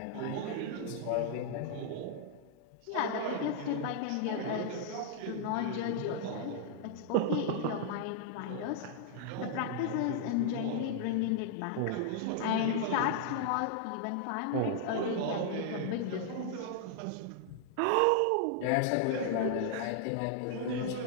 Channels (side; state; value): both; different; correlation -0.01